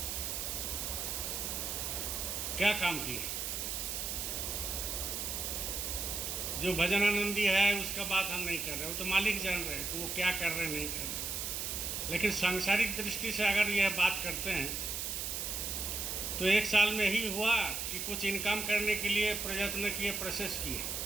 क्या काम किए? जो भजन आनंदी है उसका बात हम नहीं कर रहे, वो तो मालिक जान रहे हैं कि वो क्या कर रहे हैं, नहीं कर रहे। लेकिन सांसारिक दृष्टि से अगर यह बात करते हैं तो 1 साल में ही हुआ कि कुछ इनकम करने के लिए प्रयत्न किए, प्रोसेस किए,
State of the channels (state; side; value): noise; right; hiss, 2 dB below the sound